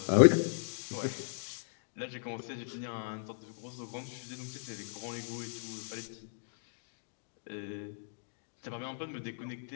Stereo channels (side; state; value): right; silent; digital silence